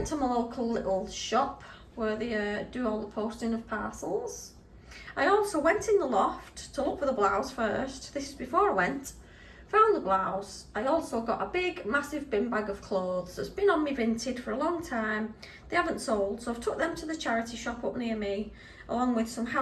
to my local little shop where they do all the posting of parcels. I also went in the loft to look for the blouse first. This is before I went. Found the blouse. I also got a big, massive bin bag of clothes that's been on me Vinted for a long time. They haven't sold, so I've took them to the charity shop up near me, along with some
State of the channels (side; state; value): both; identical; correlation 1.00